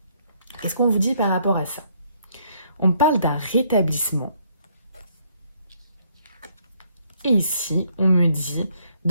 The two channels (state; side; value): inverted; both; correlation -0.68